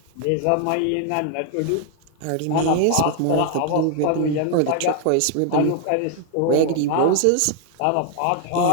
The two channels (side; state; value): both; different; correlation 0.00